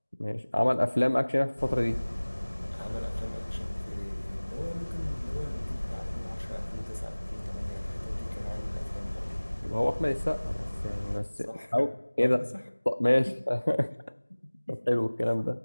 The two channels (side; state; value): both; inverted; correlation -1.00